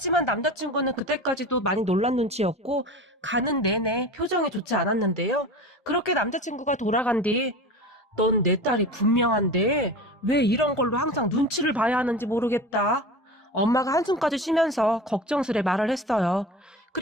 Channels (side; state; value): both; normal; correlation 0.32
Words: 남자친구는 그때까지도 많이 놀란 눈치였고 가는 내내 표정이 좋지 않았는데요. 그렇게 남자친구가 돌아간 뒤 넌 내 딸이 분명한데 왜 이런 걸로 항상 눈치를 봐야 하는지 모르겠다. 엄마가 한숨까지 쉬면서 걱정스레 말을 했어요.